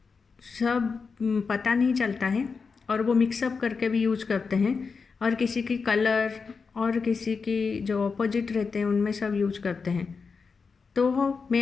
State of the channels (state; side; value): quieter; right; 5.1 dB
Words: सब पता नहीं चलता है और वो मिक्सअप करके भी यूज करते हैं और किसी की कलर और किसी की जो अपोजिट रहते हैं उनमें सब यूज करते हैं। तो